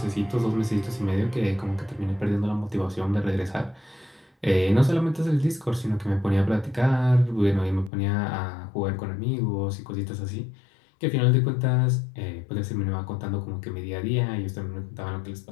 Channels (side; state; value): right; drops out; at 7.9 s